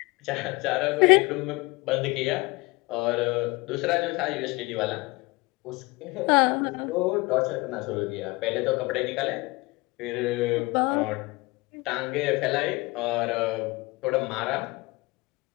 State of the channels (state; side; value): quieter; right; 24.1 dB